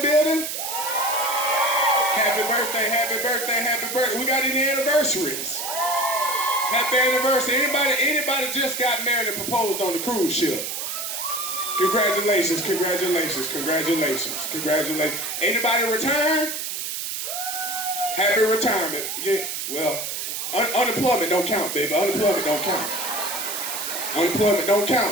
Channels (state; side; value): noise; right; hiss, 4 dB below the sound